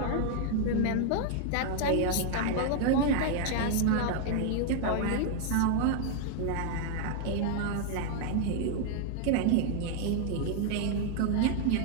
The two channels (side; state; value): both; different; correlation 0.00